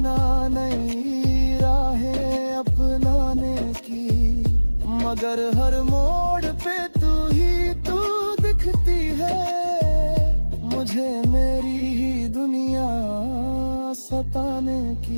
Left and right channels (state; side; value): inverted; both; correlation -1.00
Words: नई राहें अपनाने की, मगर हर मोड़ पे तू दिखती है। मुझे मेरी ही दुनिया सताने